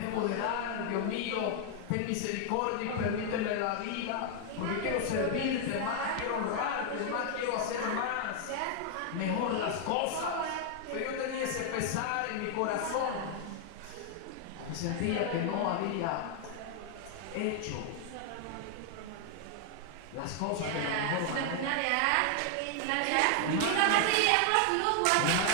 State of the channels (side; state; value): both; different; correlation 0.00